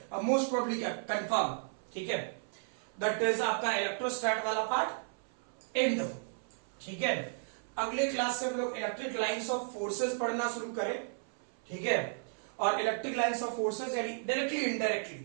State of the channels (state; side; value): silent; left; 55 dB below the other